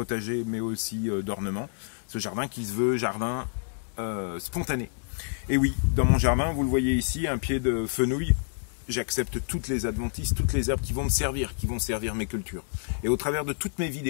mais aussi d'ornement. Ce jardin qui se veut jardin spontané. Et oui, dans mon jardin, vous le voyez ici, un pied de fenouil, j'accepte toutes les adventices, toutes les herbes qui vont me servir, qui vont servir mes cultures. Et au travers de toutes mes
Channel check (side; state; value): right; silent; digital silence